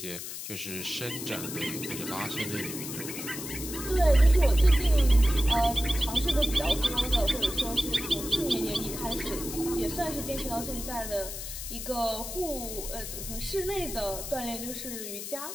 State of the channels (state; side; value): noise; left; hiss, 8 dB below the sound